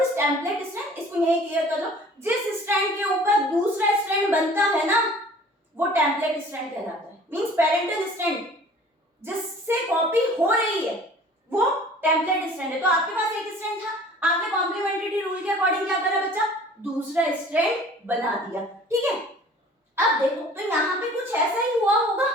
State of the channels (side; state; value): both; normal; correlation 0.49